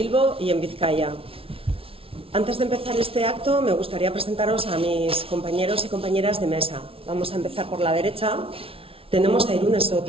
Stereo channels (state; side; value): late; left; 0.26 ms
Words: y en Vizcaya. Antes de empezar este acto, me gustaría presentaros a mis compañeros y compañeras de mesa. Vamos a empezar por la derecha. Tenemos a Irune